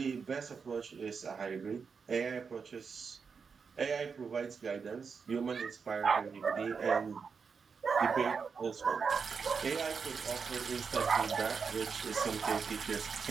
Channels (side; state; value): left; quieter; 5.6 dB